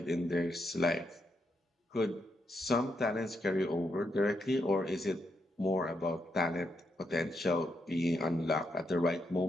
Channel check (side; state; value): both; normal; correlation 0.81